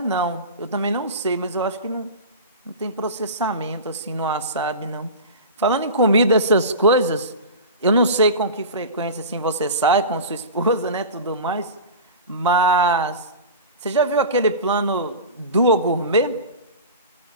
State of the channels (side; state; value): both; inverted; correlation -0.31